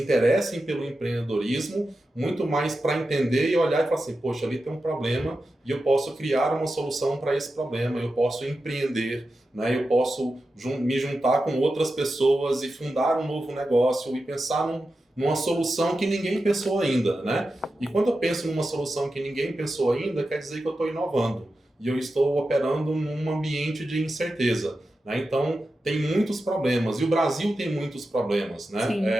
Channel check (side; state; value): both; normal; correlation 0.91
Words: pelo empreendedorismo, muito mais para entender e olhar e falar assim, poxa, ali tem um problema e eu posso criar uma solução para esse problema, eu posso empreender, né? Eu posso me juntar com outras pessoas e fundar um novo negócio e pensar numa solução que ninguém pensou ainda, né? E quando eu penso numa solução que ninguém pensou ainda, quer dizer que eu estou inovando e eu estou operando num ambiente de incerteza. Então, tem muitos problemas, e o Brasil tem muitos problemas,